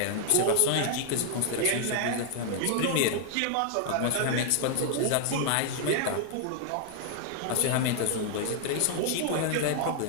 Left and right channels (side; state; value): both; different; correlation 0.00